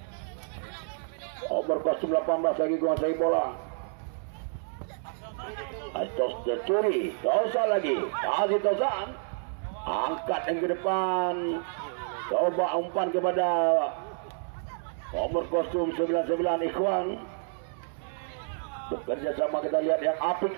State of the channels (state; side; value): silent; left; digital silence